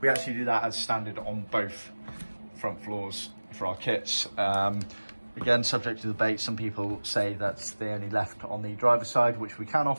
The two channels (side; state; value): both; inverted; correlation -1.00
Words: actually do that as standard on both front floors for our kits. Again, subject to debate. Some people say that they only left on the driver's side, which we can